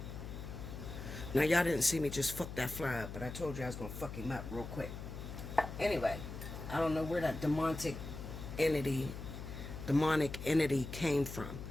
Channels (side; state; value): left; noise; hum, 9 dB below the sound